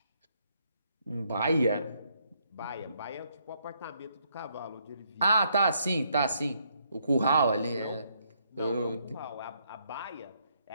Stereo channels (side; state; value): both; inverted; correlation -0.73